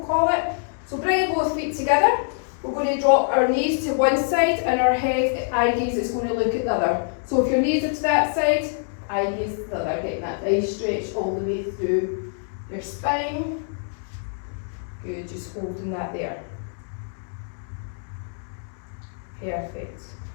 call it. So bringing both feet together, we're going to drop our knees to one side and our head, eye gaze is going to look at the other. So if your knees are to that side, eye gaze to the other, getting that nice stretch all the way through your spine. Good, just holding that there. Perfect.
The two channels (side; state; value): right; silent; digital silence